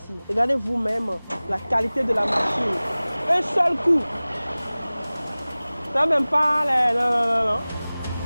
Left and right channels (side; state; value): both; inverted; correlation -0.99